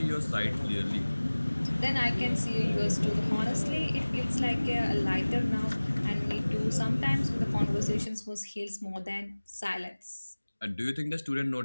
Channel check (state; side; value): inverted; both; correlation -1.00